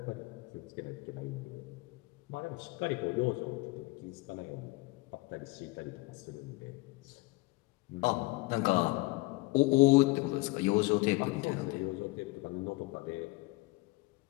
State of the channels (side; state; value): right; quieter; 23.1 dB